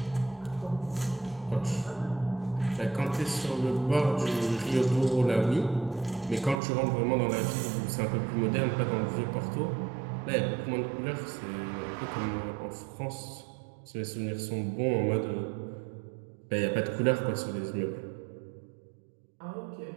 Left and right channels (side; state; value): left; drops out; at 6.6 s